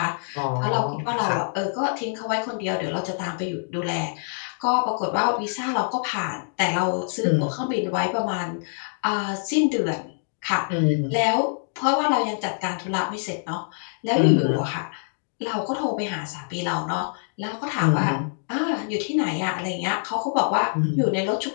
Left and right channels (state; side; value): silent; right; digital silence